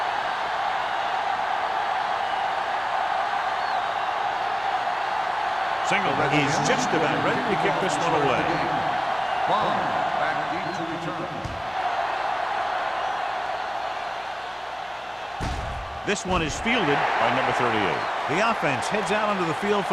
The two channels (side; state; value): both; identical; correlation 1.00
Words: Single is just about ready to kick this one away. Ball back deep to return. This one is fielded by number 38. The offense heads out onto the field for